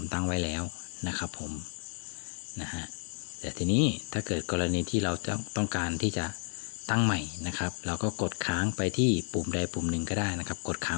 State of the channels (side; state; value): right; silent; 57 dB below the other